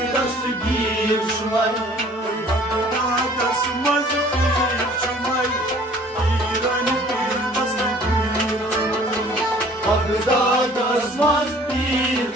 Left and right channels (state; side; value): normal; both; correlation 0.53